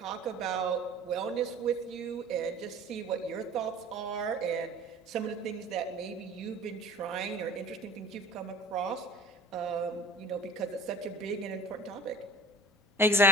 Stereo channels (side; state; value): both; normal; correlation 0.43